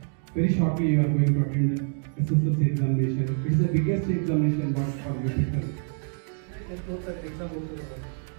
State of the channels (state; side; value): silent; left; 55 dB below the other